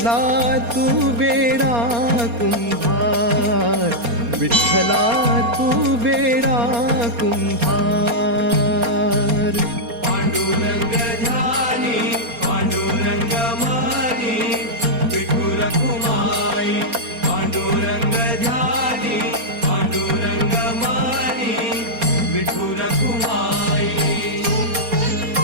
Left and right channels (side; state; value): left; late; 4.3 ms